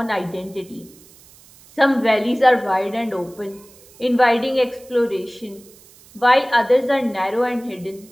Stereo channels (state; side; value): noise; right; hiss, 25 dB below the sound